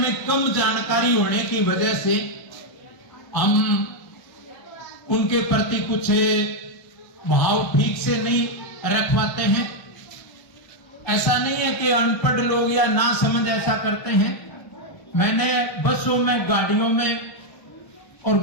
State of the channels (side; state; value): right; late; 1.4 ms